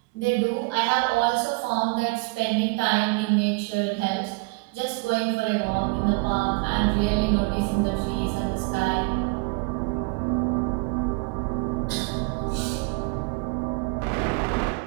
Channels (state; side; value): quieter; left; 28.9 dB